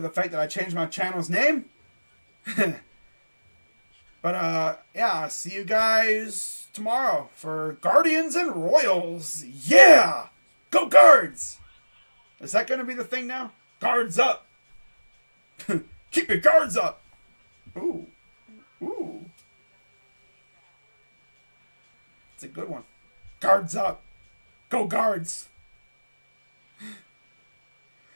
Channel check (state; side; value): inverted; both; correlation -1.00